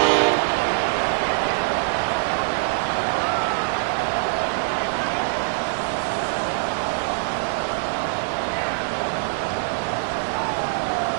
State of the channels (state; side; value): silent; left; 63 dB below the other